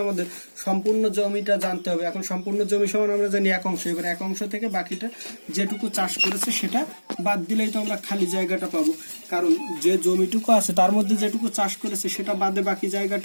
আমাদের সম্পূর্ণ জমিটা জানতে হবে। এখন সম্পূর্ণ জমি সমান আমরা জানি 1 অংশ। এবার 1 অংশ থেকে বাকিটা যেটুকু চাষ করেছে সেটা বাদ দিলেই তো আমরা খালি জায়গাটা পাবো। কারণ যে জমিটুকু আছে তার মধ্যে যেটুকু চাষ করেছে সেটা বাদে বাকি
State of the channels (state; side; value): inverted; both; correlation -1.00